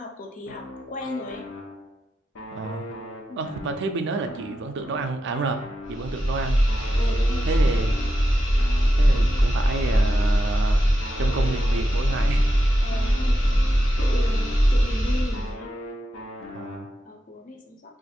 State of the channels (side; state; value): both; normal; correlation 0.88